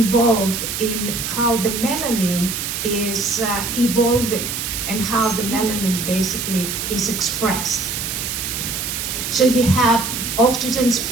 in how the melanin is evolving and how the melanin basically is expressed. So you have oxygen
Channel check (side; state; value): right; noise; hiss, 4 dB below the sound